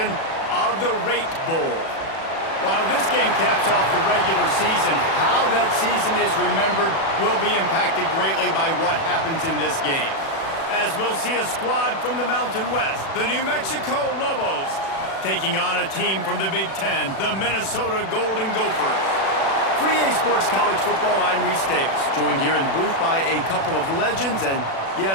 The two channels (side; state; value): right; late; 36 ms